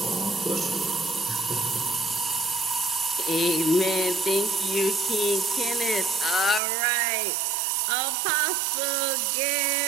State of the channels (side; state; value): left; drops out; at 6.6 s